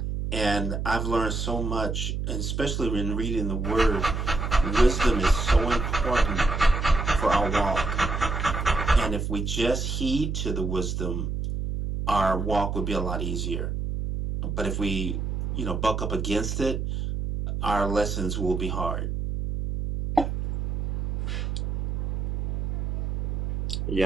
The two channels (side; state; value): right; noise; hum, 2 dB below the sound